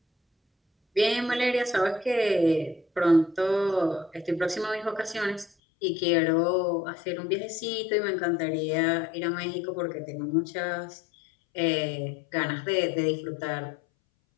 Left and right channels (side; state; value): right; drops out; at 5.5 s